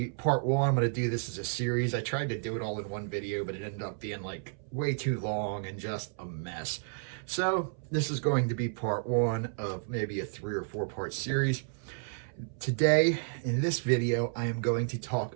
part one. I'm going to do this as a series. I tried to do it all in one video, but it ended up being like way too long and just a mess. So this is going to be part one of maybe a 3 or 4 part series. Today, in this video, I am going to talk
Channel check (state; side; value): silent; left; 57 dB below the other